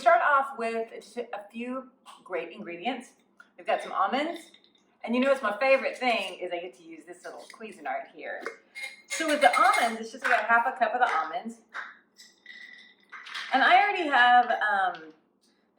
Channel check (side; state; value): both; identical; correlation 1.00